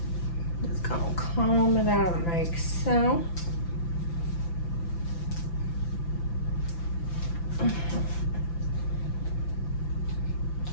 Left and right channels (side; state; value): right; late; 5.9 ms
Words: Just gonna comb it out like so.